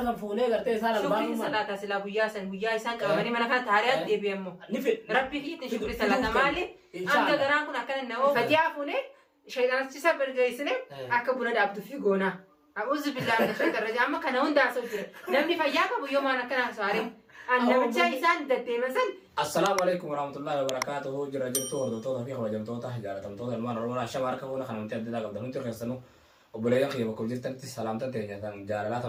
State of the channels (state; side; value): identical; both; correlation 1.00